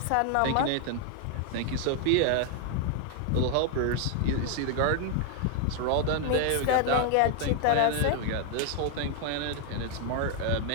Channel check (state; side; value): different; both; correlation 0.00